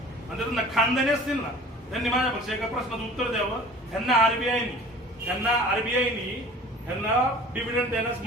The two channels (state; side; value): normal; both; correlation 0.44